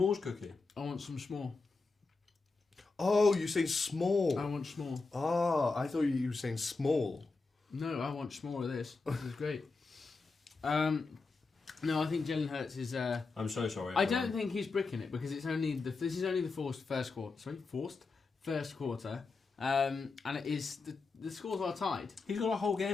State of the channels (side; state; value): right; quieter; 4.0 dB